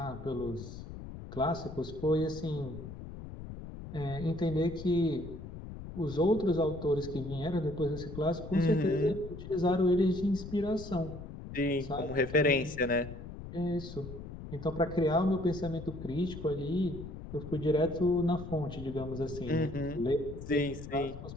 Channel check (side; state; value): left; noise; rumble, 11 dB below the sound